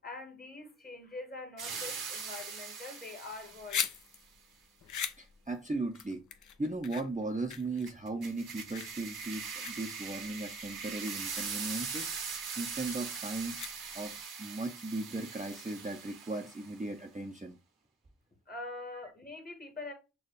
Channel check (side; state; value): both; normal; correlation 0.52